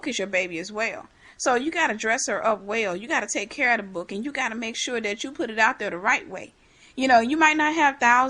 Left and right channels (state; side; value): identical; both; correlation 1.00